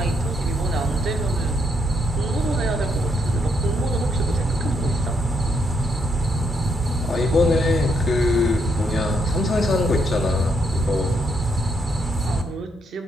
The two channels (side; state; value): both; normal; correlation 0.76